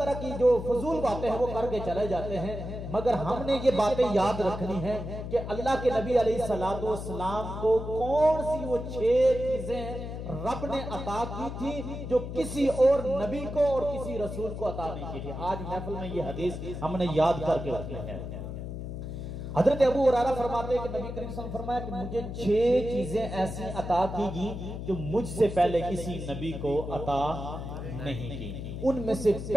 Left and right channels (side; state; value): left; noise; hum, 7 dB below the sound